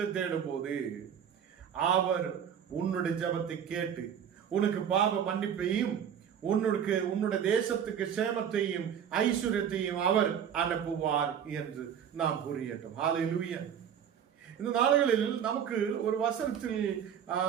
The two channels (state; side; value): quieter; left; 8.5 dB